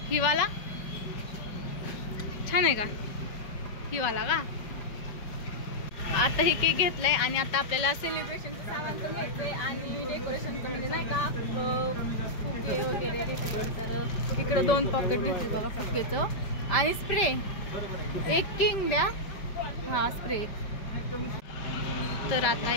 हिवाला छान आहे का हिवाला का। आता हे केक घेतलाय आणि आता आपल्याला सेलिब्रेशनचं सामान पण घ्यायचंय आणि डेकोरेशनचं म्हणजे नाही का फुगे वगैरे घेतले। तर इकडं 2 पॉकेट घेतले बघा फुग्याचं आणि स्प्रे एक किंग द्या हा स्प्रे। तर आता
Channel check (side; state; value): right; late; 5.2 ms